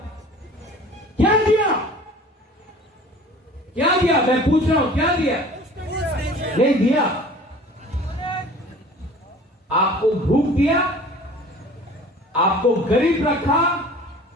क्या दिया, क्या दिया, मैं पूछ रहा हूं क्या दिया, नहीं दिया। आपको भूख दिया, आपको गरीब रखा,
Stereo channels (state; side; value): normal; both; correlation 0.45